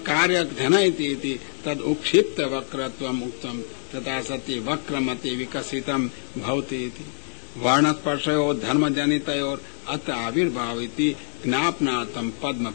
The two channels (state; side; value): silent; right; digital silence